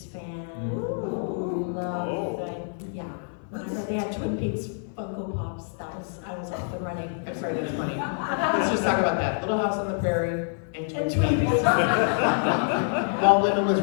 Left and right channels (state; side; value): silent; right; 57 dB below the other